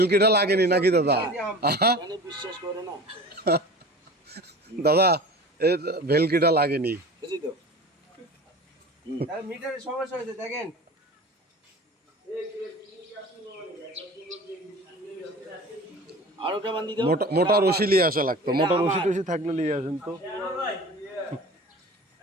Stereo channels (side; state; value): both; normal; correlation 0.38